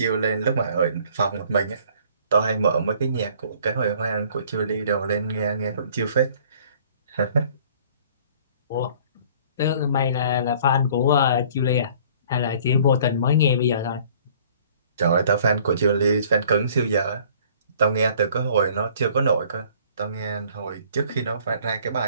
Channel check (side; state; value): both; inverted; correlation -0.55